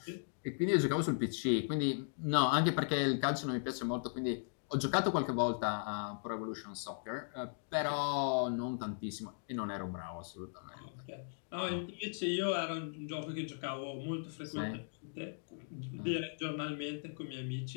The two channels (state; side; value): silent; right; digital silence